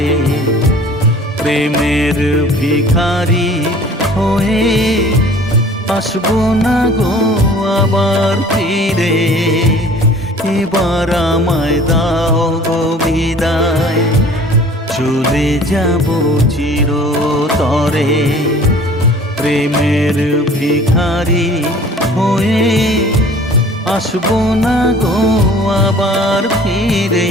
প্রেমের ভিখারি হয়ে আসবো না গো আবার ফিরে। এবার আমায় দাও গো বিদায়, চলে যাব চিরতরে। প্রেমের ভিখারি হয়ে আসবো না গো আবার ফিরে।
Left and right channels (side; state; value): both; normal; correlation 0.49